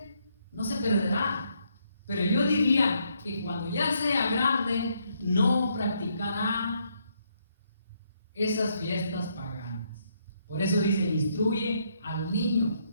No se perderá. Pero yo diría que cuando ya sea grande, no practicará esas fiestas paganas. Por eso dice: instruye al niño.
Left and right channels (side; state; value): both; inverted; correlation -0.74